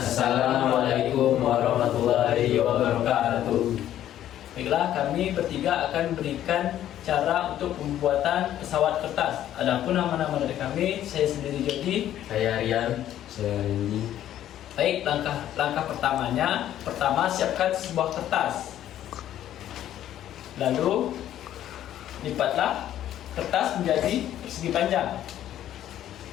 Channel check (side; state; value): right; quieter; 11.8 dB